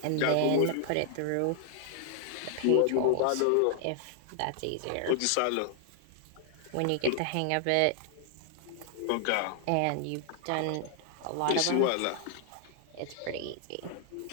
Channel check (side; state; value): both; different; correlation -0.01